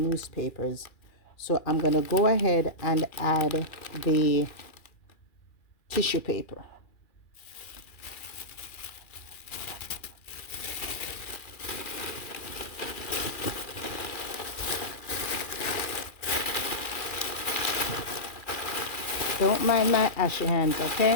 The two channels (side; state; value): right; late; 2.4 ms